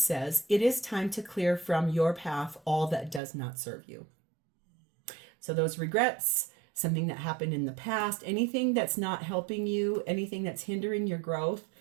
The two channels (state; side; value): drops out; left; at 3.2 s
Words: it is time to clear from your path all that does not serve you. So those regrets, something that happened in the past, anything that's not helping you, anything that's hindering your growth,